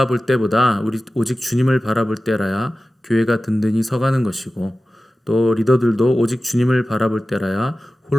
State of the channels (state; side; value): normal; both; correlation 0.95